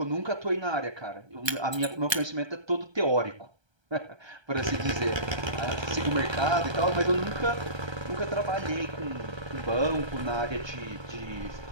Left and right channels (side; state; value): left; late; 1.3 ms